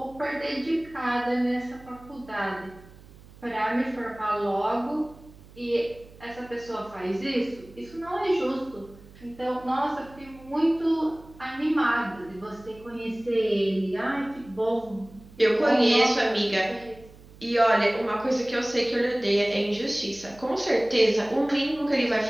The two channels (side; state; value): right; noise; hum, 22 dB below the sound